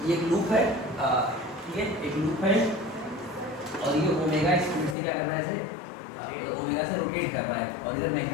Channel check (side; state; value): right; drops out; at 5.0 s